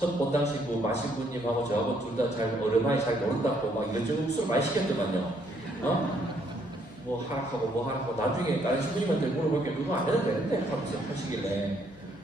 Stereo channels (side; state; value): left; noise; hum, 25 dB below the sound